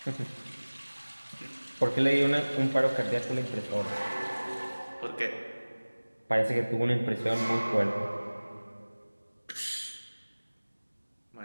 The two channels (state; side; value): inverted; both; correlation -1.00